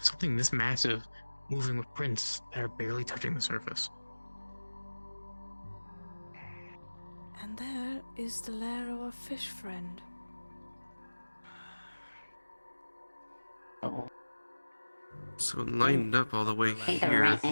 Something this massive moving with prints that are barely touching the surface. And there is the lair of our fish friend. So it lined up all the way I here.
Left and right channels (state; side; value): inverted; both; correlation -1.00